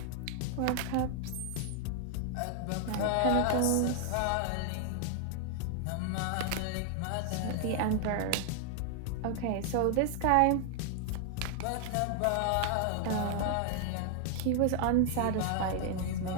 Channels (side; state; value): both; different; correlation 0.00